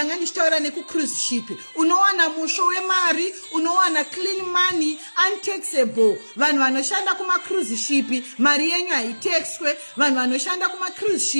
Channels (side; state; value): both; inverted; correlation -1.00